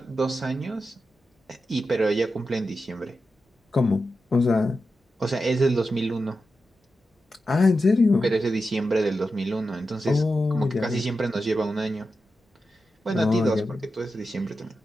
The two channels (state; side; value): normal; both; correlation 0.90